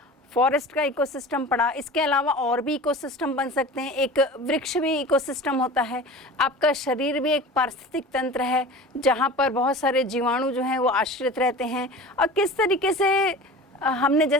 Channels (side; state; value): both; normal; correlation 0.36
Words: फॉरेस्ट का इकोसिस्टम पढ़ा। इसके अलावा और भी इकोसिस्टम बन सकते हैं। एक वृक्ष भी इकोसिस्टम होता है। आपका शरीर भी एक पारिस्थितिक तंत्र है जहाँ पर बहुत सारे जीवाणु जो हैं वो आश्रित रहते हैं। और किस तरीके से हमने